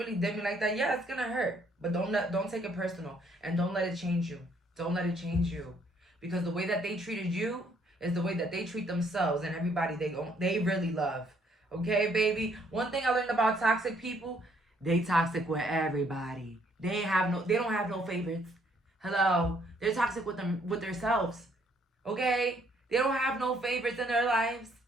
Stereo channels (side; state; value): both; normal; correlation 0.67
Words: did me like that. Yeah, it's gonna hurt. But don't take it personal, and don't let it change you. Don't let it change you, because the way that they treated you is the way that they treat themselves and everybody they really love. Okay, baby. One thing I learned about toxic people: they toxic with everybody. They don't have no favorites. Hello. They're toxic with themselves. Okay? They don't have no favorites in their lives.